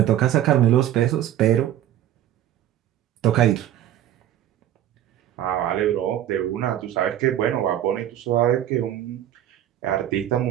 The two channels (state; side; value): quieter; left; 11.9 dB